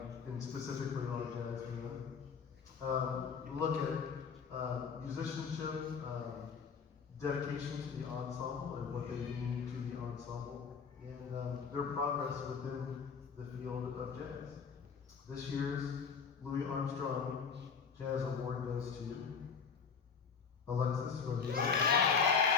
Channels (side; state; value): right; quieter; 6.0 dB